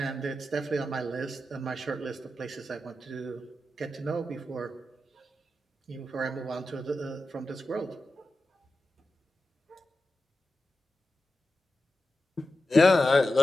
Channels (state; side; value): normal; both; correlation 0.91